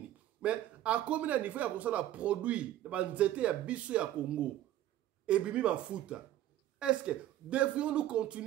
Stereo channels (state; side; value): quieter; left; 13.1 dB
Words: Mais, à combien de niveau, il y a comme ça, la produit, il y a Bisso, il y a Congo. Et bimi, ma foute. Est-ce que devrions-nous